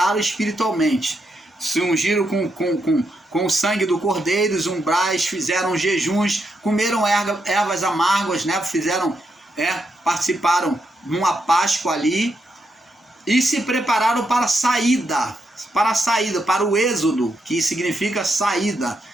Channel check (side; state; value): both; normal; correlation 0.81